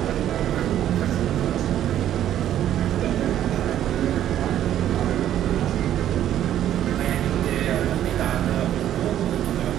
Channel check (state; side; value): quieter; left; 11.4 dB